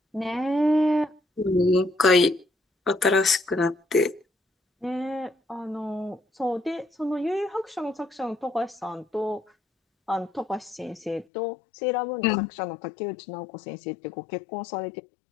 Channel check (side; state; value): right; drops out; at 11.2 s